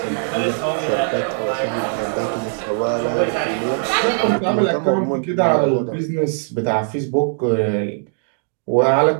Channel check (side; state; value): left; silent; 64 dB below the other